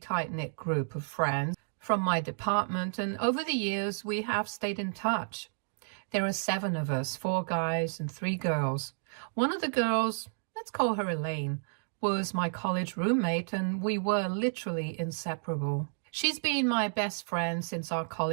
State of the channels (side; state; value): left; silent; digital silence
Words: group of friends from my department, and over the years we have stayed in touch. There are 7 of us, 4 guys and 3 girls. One of the girls, let's call her Elaine, was my college roommate, and we were literally inseparable. She's been my best friend since our